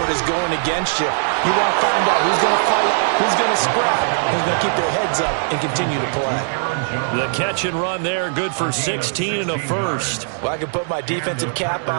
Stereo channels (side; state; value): left; silent; 63 dB below the other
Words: is going against you. You want to find out who's going to fight, who's going to scrap, who's going to keep their heads up and continue to play. The catch and run there, good for 16 and a first. Well, I can put my defensive cap